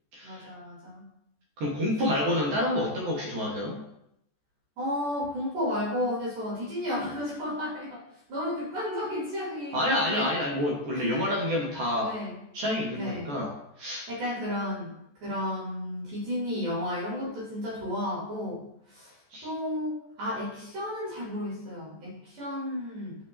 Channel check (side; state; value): left; late; 14 ms